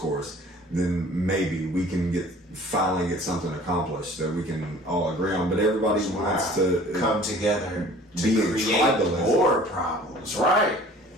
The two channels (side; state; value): both; normal; correlation 0.49